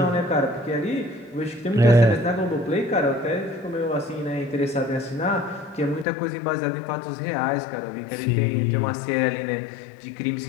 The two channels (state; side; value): drops out; right; at 6.1 s